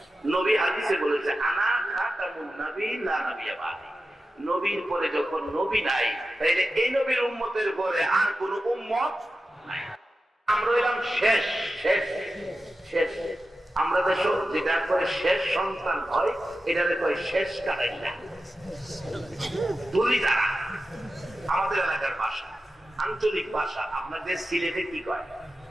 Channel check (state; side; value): normal; both; correlation 0.92